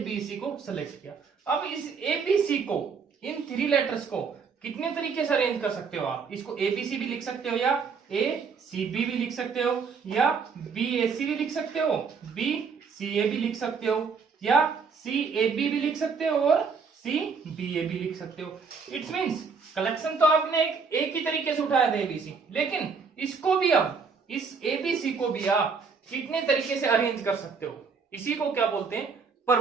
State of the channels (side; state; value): left; quieter; 5.4 dB